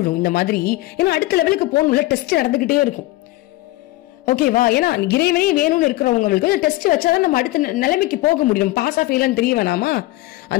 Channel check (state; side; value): quieter; right; 18.4 dB